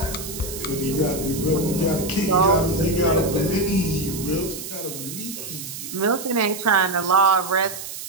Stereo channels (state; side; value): noise; right; hiss, 9 dB below the sound